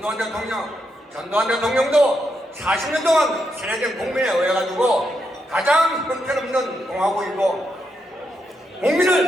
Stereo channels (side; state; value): both; normal; correlation 0.82